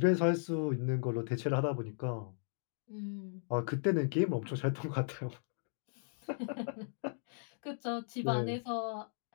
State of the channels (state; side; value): silent; right; digital silence